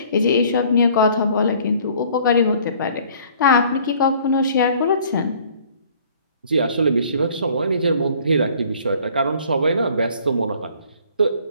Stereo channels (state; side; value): inverted; both; correlation -0.55